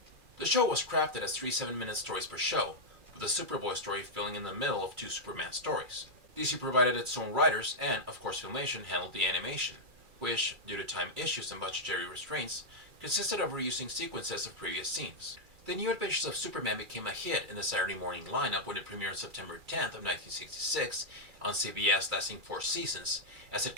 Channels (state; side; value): late; left; 2.4 ms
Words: The show was crafted as 3 7-minute stories per show, with the Superboy story filling in the middle of 2 Superman stories. DC provided its own writers, and, of course, Filmation handled the animation, which, due to time issues and budgetary restraints, consisted of reusing sequences of previous scenes. The New Adventures of Superman became a hit in the Saturday morning lineup when it premiered on September 10th of 1966 on CBS, lasting 4 seasons, as it